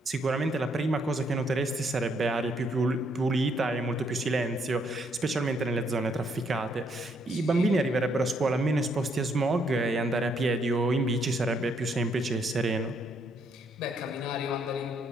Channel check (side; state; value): both; normal; correlation 0.72